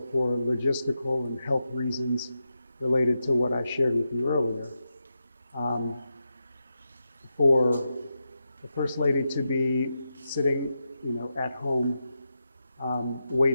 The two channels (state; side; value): inverted; both; correlation -0.88